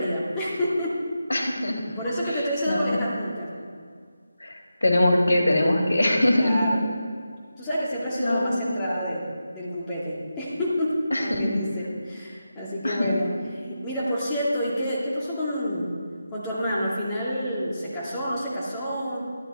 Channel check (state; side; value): inverted; both; correlation -0.89